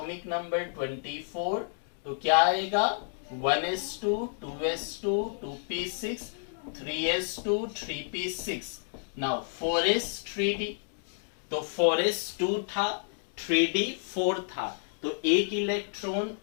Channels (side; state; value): right; silent; digital silence